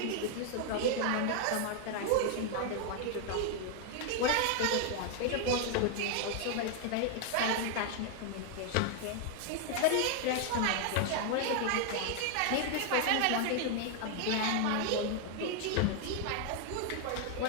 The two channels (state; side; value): different; both; correlation 0.00